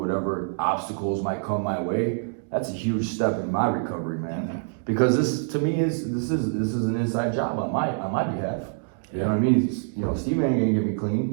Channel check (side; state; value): left; silent; digital silence